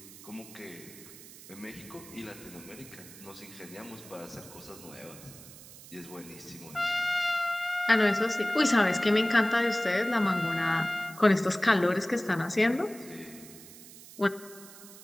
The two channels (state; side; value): noise; right; hiss, 18 dB below the sound